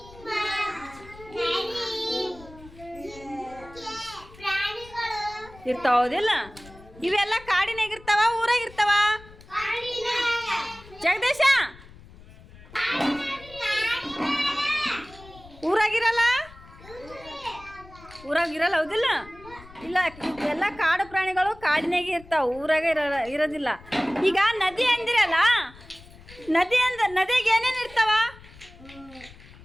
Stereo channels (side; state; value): left; noise; rumble, 21 dB below the sound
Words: ಇರ್ತಾವ, ಹೌದಿಲ್ಲ? ಇವೆಲ್ಲ ಕಾಡಿನಾಗ ಇರ್ತಾವ ಊರಾಗಿರ್ತಾವ? ಜಗದೀಶ, ಊರಾಗಿರಲ್ಲ? ಊರಾಗಿರಲ್ಲ, ಹೌದಿಲ್ಲ? ಇಲ್ಲ, ಎಲ್ಲ ಕಾಡು ಪ್ರಾಣಿಗಳು ಕಾಡಿನಾಗೆ ಇರ್ತಾವ, ಊರಾಗ ಇರೋದಿಲ್ಲ. ಈಗ ನದಿ ಅಂದಿರಲ್ಲ, ನದಿಗೆ ಏನೇನು ಇರ್ತಾವ?